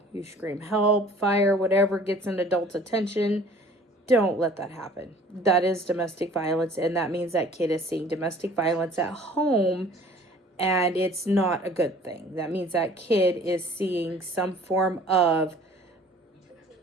You scream help, fire, whatever gets an adult's attention. Don't let that happen. That is domestic violence, and that means that kid is seeing domestic violence at home, and it's not a good thing. That means that kid is seeing some form of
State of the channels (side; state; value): both; normal; correlation 0.50